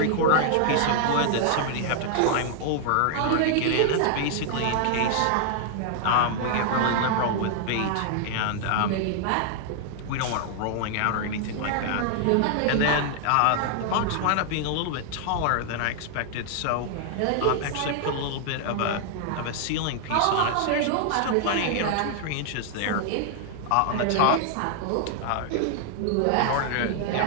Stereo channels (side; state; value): both; different; correlation -0.01